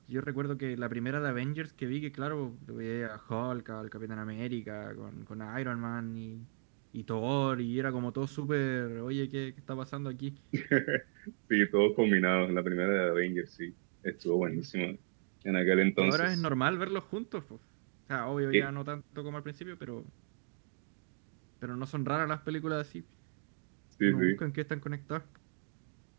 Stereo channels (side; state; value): left; silent; 54 dB below the other